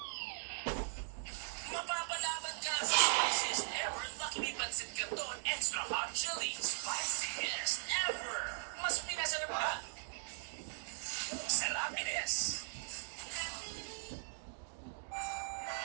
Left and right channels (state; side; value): silent; left; digital silence